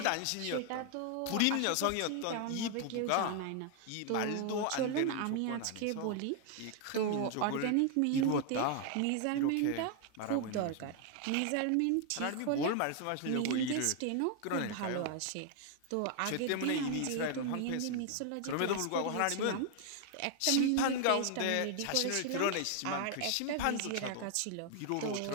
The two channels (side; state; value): both; different; correlation 0.00